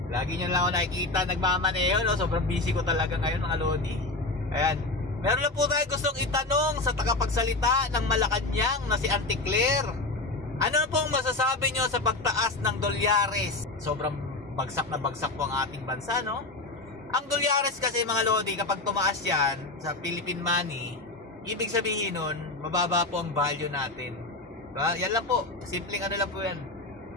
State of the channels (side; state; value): right; quieter; 3.1 dB